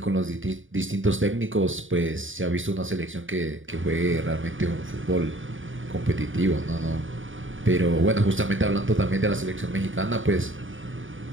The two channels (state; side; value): late; left; 0.57 ms